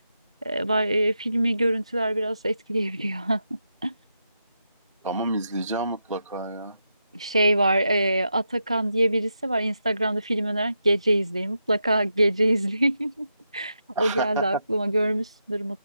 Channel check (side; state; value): both; inverted; correlation -0.85